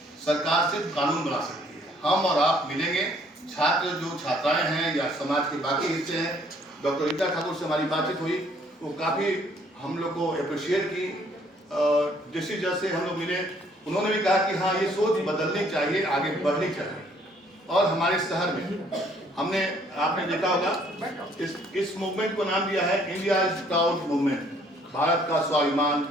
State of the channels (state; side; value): normal; both; correlation 0.62